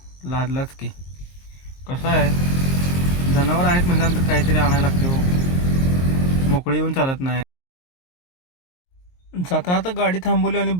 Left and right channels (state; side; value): late; right; 22 ms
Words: लादलाच की. कसं आहे, जनावर आहेत म्हटल्यानंतर काहीतरी आणायला लागते हो, मोकळी येऊन चालत नाही. जाता आता गाडी थांबवली आणि